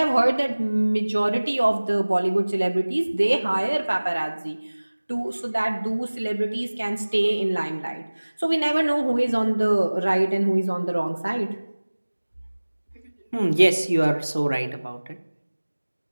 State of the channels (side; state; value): both; inverted; correlation -1.00